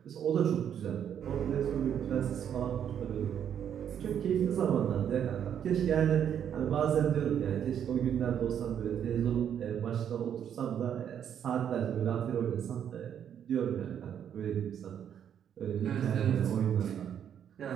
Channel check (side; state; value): left; quieter; 9.0 dB